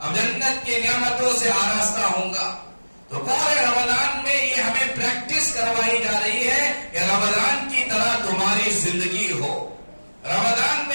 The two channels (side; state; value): both; inverted; correlation -1.00